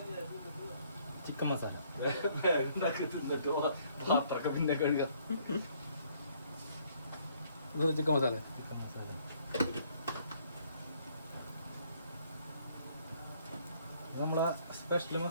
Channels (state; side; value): inverted; both; correlation -0.64